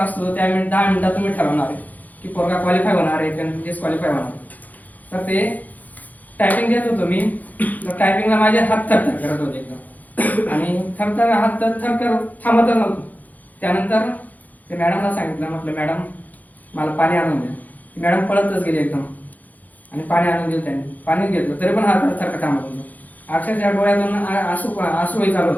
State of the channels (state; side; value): late; right; 0.080 ms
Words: त्या 10 मिनिटात तुम्ही ठरवणार आहे की पोरगा क्वालिफाय होणार आहे की डिस्क्वालिफाय होणार आहे. तर ते टायपिंग देत होतो मी, तर टायपिंगला माझे हात थरथर करत होते एकदम, आणि थरथर हात थरथर थांबतच नव्हतो. त्यानंतर ते मॅडमला सांगितलं, म्हटलं मॅडम मला पाणी आणून द्या. मॅडम पळतच गेली एकदम आणि पाणी आणून दिलं त्यांनी. पाणी घेतलं तरी पण हात थरथर थांबत होतो. अक्षरशः डोळ्यातून आसूही चालू